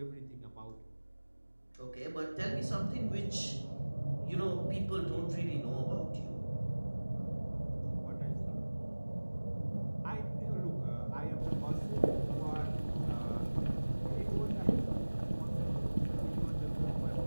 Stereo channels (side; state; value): both; inverted; correlation -1.00